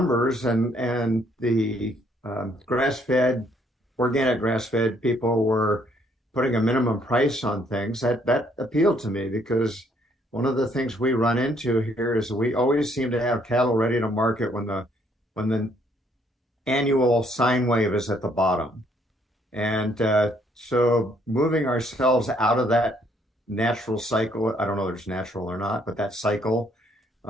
and the grass-fed, organic grass-fed people were putting a minimum price on things, that appealed to me because one of the things we run into here is we always seem to have cattle ready to market when the annual sine wave is at the bottom. And so moving ourselves out of that natural cycle, I don't know if it's natural or not, but that cycle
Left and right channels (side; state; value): both; normal; correlation 0.67